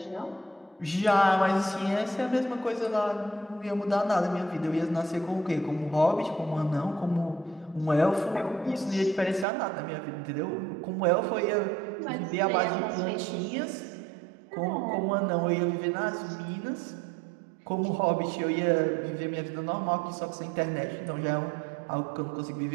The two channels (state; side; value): drops out; left; at 9.5 s